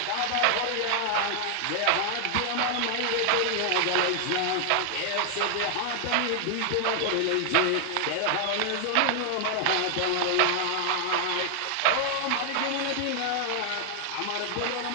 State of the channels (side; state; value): both; different; correlation 0.00